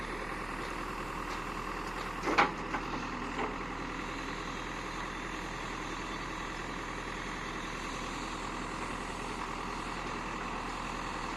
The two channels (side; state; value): right; noise; rumble, 20 dB below the sound